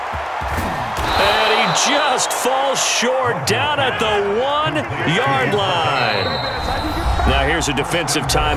And he just falls short down at the 1-yard line. Now here's a defensive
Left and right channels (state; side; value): identical; both; correlation 1.00